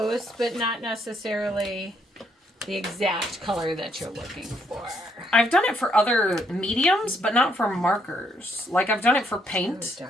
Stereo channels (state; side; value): normal; both; correlation 0.72